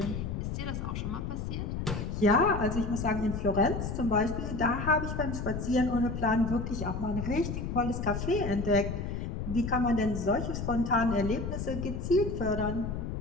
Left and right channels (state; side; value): noise; left; rumble, 4 dB below the sound